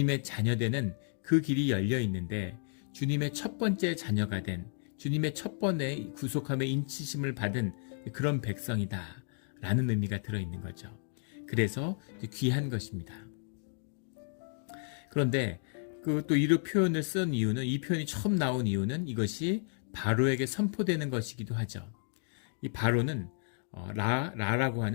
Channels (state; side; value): silent; right; 56 dB below the other